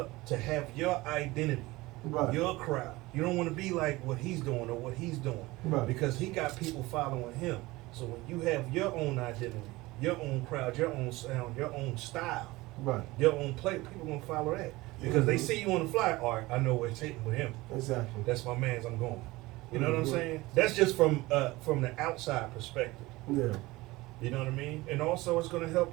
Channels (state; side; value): quieter; left; 20.4 dB